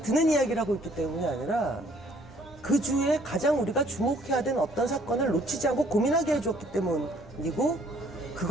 이야기를 하고 있기 때문이 아니라 그 주에 가장 우리가 주목해야 되는 어떤 사건을 놓치지 않고 고민하게 해주었기 때문이고,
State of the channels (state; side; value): normal; both; correlation 0.60